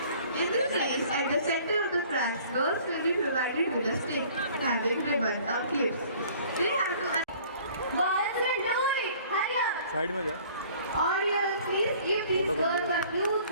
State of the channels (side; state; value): both; inverted; correlation -0.53